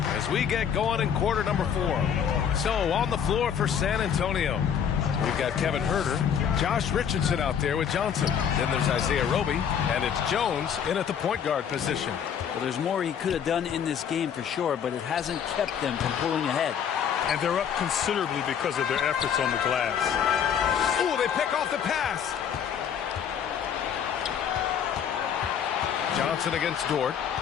we get going in quarter number 4. So on the floor for San Antonio, we've got Kevin Herder, Josh Richardson out there with Johnson. Then there's Isaiah Roby, and it's Jones in at the point guard position. Well, there's more he could have done in this game for sure, but it hasn't kept them from pulling ahead. And they're up considerably because of their efforts on the glass. Ooh, they pick off the pass. Johnson against Dort.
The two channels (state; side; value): quieter; right; 8.1 dB